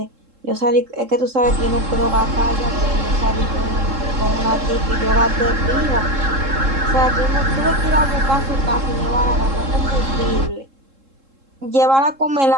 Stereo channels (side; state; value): left; late; 3.7 ms